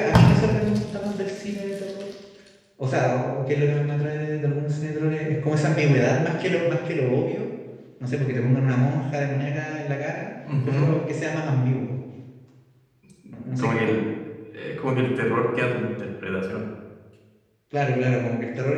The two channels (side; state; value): both; identical; correlation 1.00